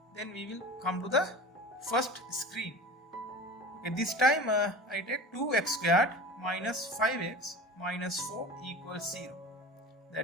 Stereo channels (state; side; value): normal; both; correlation 0.36